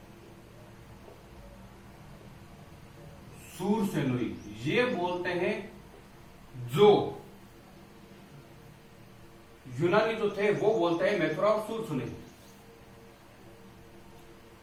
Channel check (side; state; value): both; identical; correlation 1.00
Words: सूरसेनुई, ये बोलते हैं। जो यूनानी जो थे वो बोलते हैं मैथुरा और सूरसेनुई।